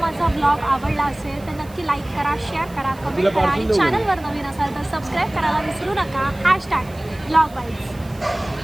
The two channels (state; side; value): noise; right; hiss, 24 dB below the sound